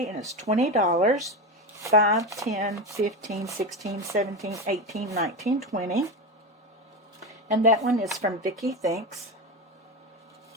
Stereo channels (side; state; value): both; normal; correlation 0.18